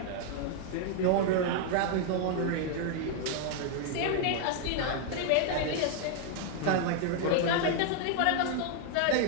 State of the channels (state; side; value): different; both; correlation 0.00